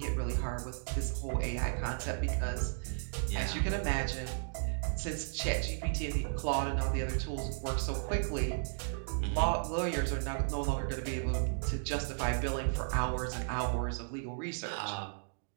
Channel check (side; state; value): left; silent; digital silence